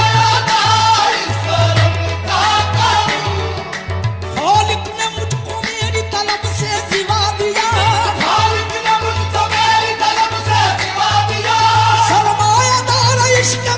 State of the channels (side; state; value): both; identical; correlation 1.00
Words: खालिक ने मुझको मेरी तलब से सिवा दिया, खालिक ने मुझको मेरी तलब से सिवा दिया, सरमायादार इश्क